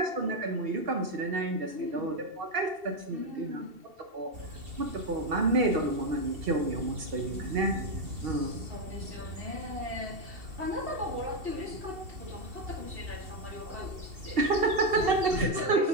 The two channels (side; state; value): left; late; 2.7 ms